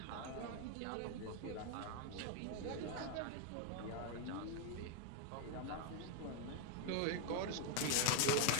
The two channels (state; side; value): different; both; correlation 0.00